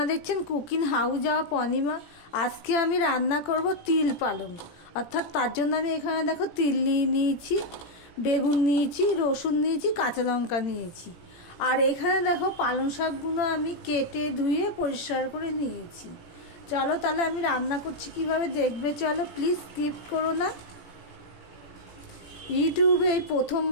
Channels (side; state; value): right; late; 17 ms